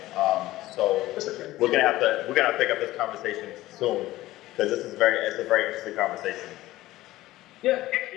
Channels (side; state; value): right; quieter; 16.6 dB